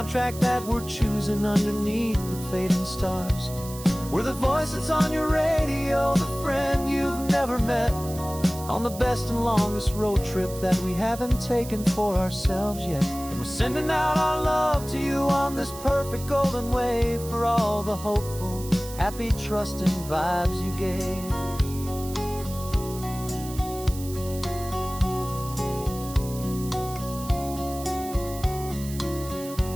that we're choosing underneath the fading stars. We're the voice that's on your radio, the friend you've never met, on the best and longest road trip that we haven't taken for ourselves yet. And we're sending out our love to you on this perfect golden wave, for all the hopeful, happy, trusting vibes you gave.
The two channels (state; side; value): noise; right; hiss, 14 dB below the sound